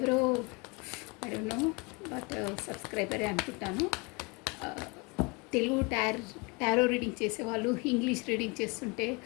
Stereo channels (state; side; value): quieter; right; 28.5 dB